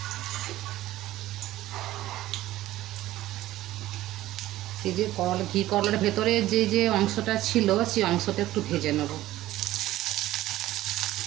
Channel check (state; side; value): quieter; left; 15.4 dB